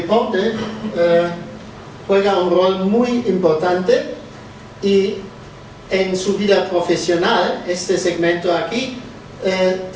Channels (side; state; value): both; identical; correlation 1.00